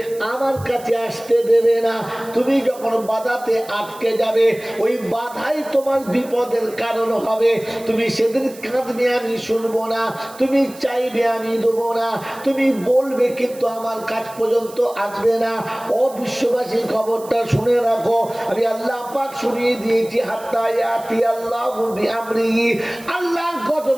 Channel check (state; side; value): noise; right; hiss, 20 dB below the sound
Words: আমার কাছে আসতে দেবে না, তুমি যখন বাধাতে আটকে যাবে, ওই বাধাই তোমার বিপদের কারণ হবে। তুমি সেদিন কাঁদবে আমি শুনবো না, তুমি চাইবে আমি দেবো না, তুমি বলবে কিন্তু আমার কাছ পর্যন্ত আসবে না। ও বিশ্ববাসী খবরটা শুনে রাখো, আমি আল্লাহ পাক শুনিয়ে দিয়েছি হাত্তা ইয়াতি আল্লাহু বিআমরিহি, আল্লাহর